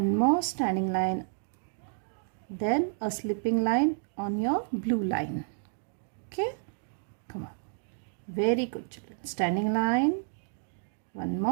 more standing line, then a sleeping line on your blue line. Okay? Come on. Very good children. Standing line, one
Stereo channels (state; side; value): silent; left; digital silence